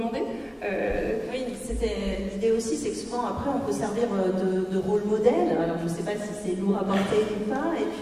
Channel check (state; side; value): identical; both; correlation 1.00